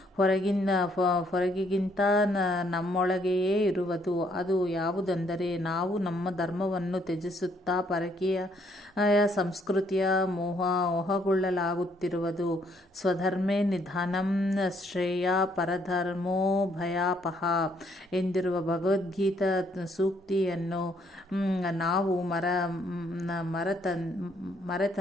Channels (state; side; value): normal; both; correlation 0.69